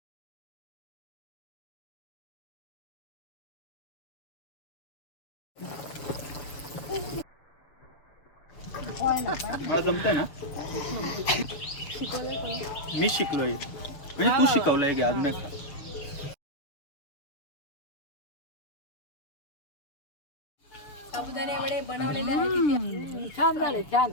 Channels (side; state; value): right; late; 7.1 ms